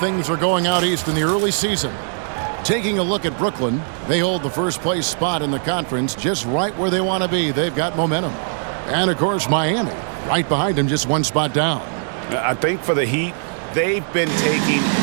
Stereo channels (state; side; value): silent; left; digital silence